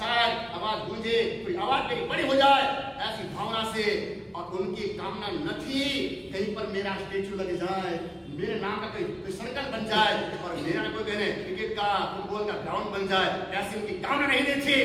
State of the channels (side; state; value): both; identical; correlation 1.00